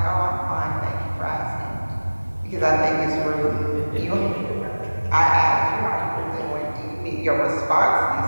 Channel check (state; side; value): inverted; both; correlation -1.00